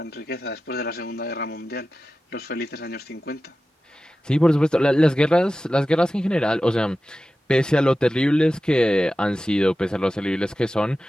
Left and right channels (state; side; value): normal; both; correlation 0.94